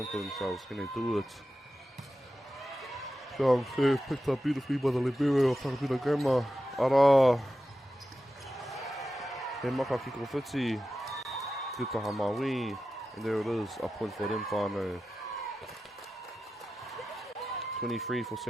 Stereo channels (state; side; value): normal; both; correlation 0.92